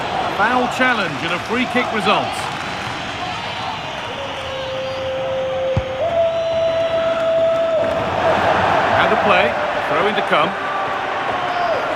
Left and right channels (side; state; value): both; identical; correlation 1.00